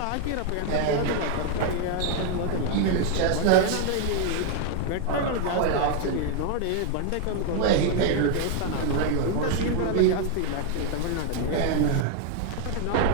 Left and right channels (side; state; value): both; different; correlation 0.01